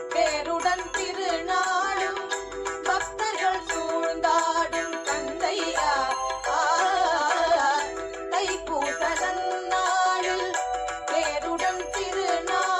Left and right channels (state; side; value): identical; both; correlation 1.00